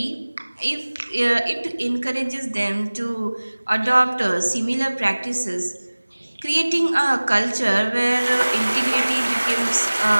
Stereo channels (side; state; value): both; inverted; correlation -1.00